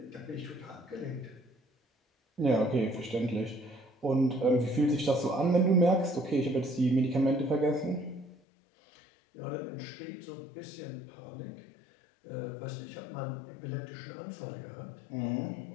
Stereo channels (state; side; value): drops out; right; at 8.3 s